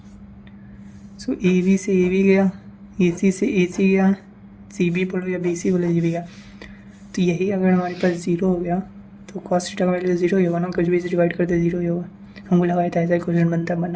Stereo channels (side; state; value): both; identical; correlation 1.00